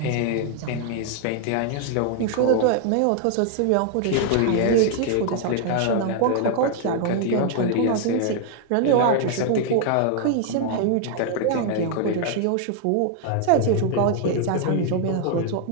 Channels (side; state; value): both; different; correlation 0.00